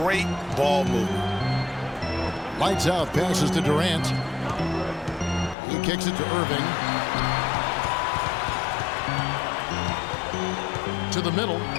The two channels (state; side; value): drops out; right; at 5.6 s